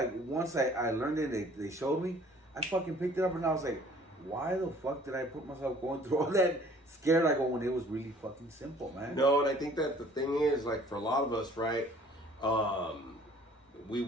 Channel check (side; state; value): both; normal; correlation 0.53